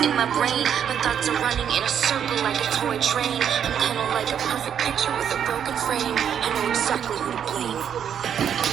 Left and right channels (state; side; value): quieter; left; 8.6 dB